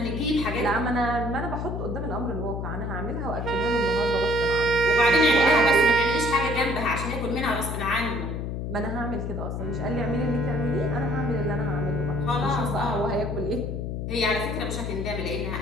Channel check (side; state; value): left; noise; hum, 4 dB below the sound